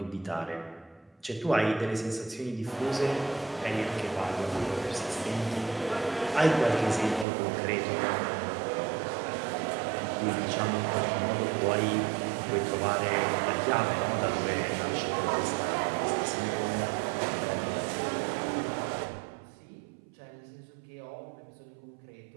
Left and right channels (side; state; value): left; drops out; at 7.2 s